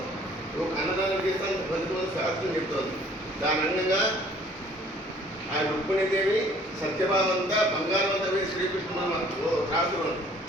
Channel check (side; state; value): both; normal; correlation 0.56